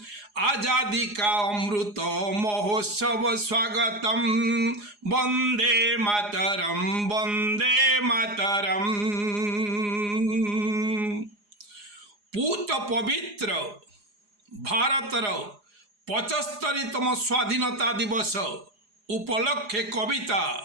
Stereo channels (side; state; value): left; late; 4.8 ms